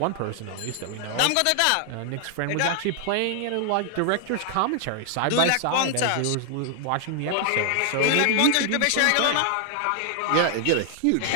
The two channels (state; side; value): different; both; correlation 0.00